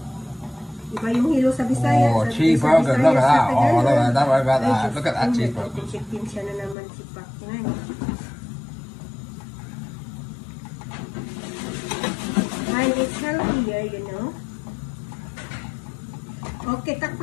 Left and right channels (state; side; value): drops out; right; at 6.8 s